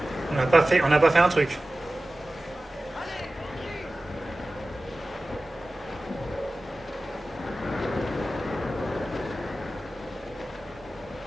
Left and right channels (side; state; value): both; normal; correlation 0.96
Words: On n'a pas fait un truc.